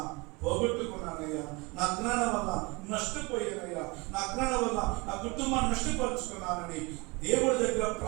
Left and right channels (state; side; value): quieter; left; 26.5 dB